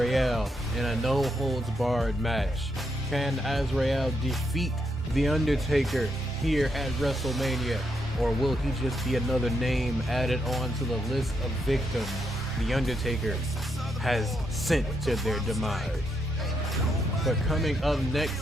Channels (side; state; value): both; normal; correlation 0.80